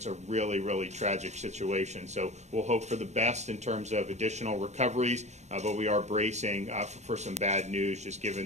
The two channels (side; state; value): left; late; 0.33 ms